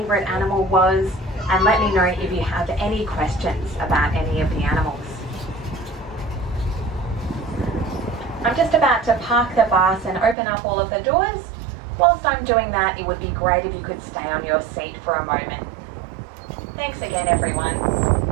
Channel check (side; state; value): left; drops out; at 10.4 s